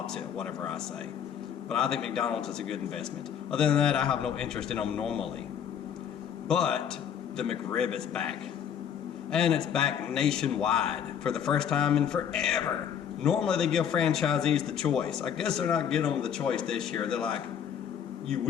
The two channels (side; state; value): right; quieter; 8.6 dB